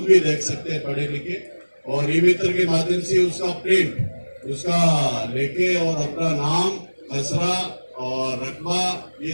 भी देख सकते हैं पढ़े लिखे, और ई मित्र के माध्यम से उसका प्रिंट उसका लेके और अपना नाम, खसरा और रकबा, ये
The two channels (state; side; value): inverted; both; correlation -1.00